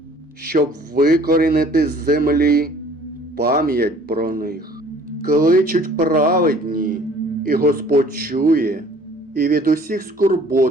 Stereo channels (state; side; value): normal; both; correlation 0.54